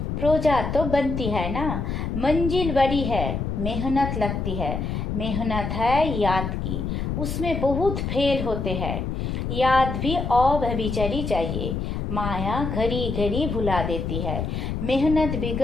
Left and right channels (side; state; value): left; noise; rumble, 3 dB below the sound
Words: प्रोजा तो बनती है ना, मंजिल बड़ी है, मेहनत लगती है। मेहनत है याद की, उसमें बहुत फेल होते हैं। याद भी अव्यभिचारी चाहिए। माया घड़ी घड़ी भुला देती है। मेहनत